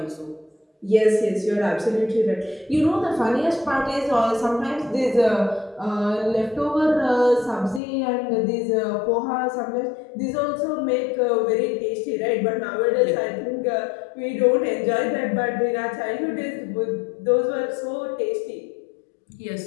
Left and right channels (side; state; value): right; drops out; at 7.8 s